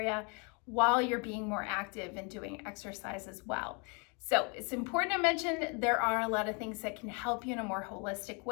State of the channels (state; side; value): quieter; right; 33.7 dB